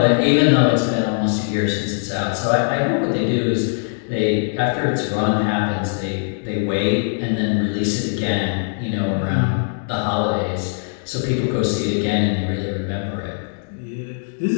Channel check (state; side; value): silent; right; digital silence